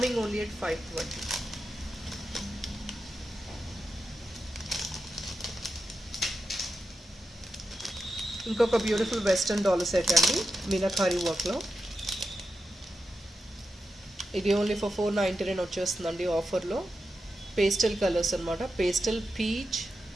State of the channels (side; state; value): both; normal; correlation 0.89